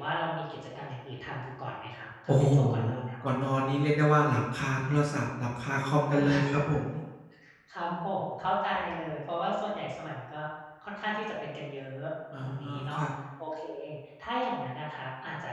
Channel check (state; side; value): identical; both; correlation 1.00